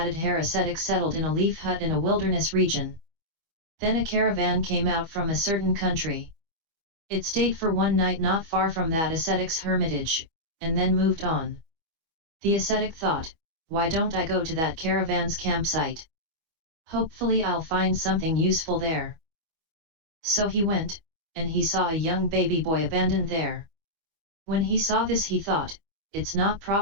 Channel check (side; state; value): left; late; 25 ms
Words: ascetic settled in a leaf hut in a wilderness region. Then a caravan came out from a certain country. It stayed for one night not far from that ascetic's hermitage, and then moved on. The ascetic thought, why don't I go to that caravan's campsite? Hopefully I'll find something useful there. So he went, and he saw a young baby boy abandoned there. When he saw this he thought, it's not